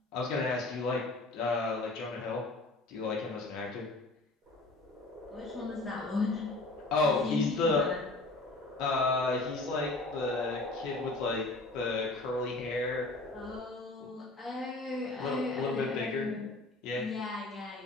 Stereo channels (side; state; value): right; quieter; 3.0 dB